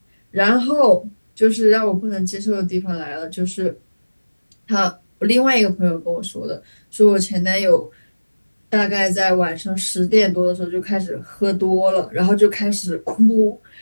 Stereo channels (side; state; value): both; inverted; correlation -1.00